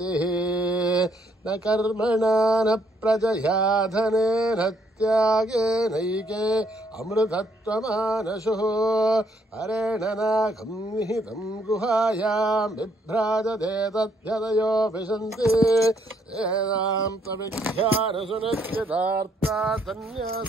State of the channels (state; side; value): normal; both; correlation 0.70